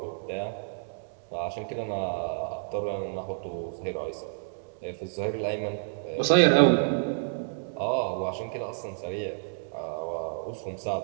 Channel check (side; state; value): left; silent; digital silence